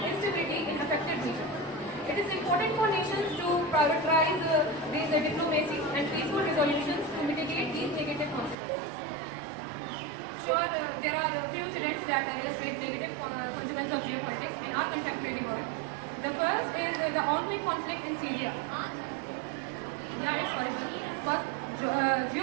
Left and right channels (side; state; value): left; drops out; at 8.6 s